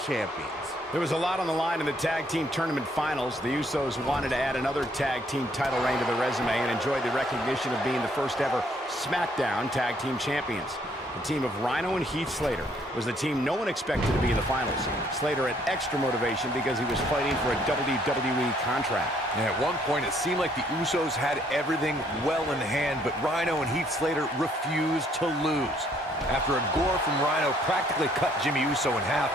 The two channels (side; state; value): both; normal; correlation 0.66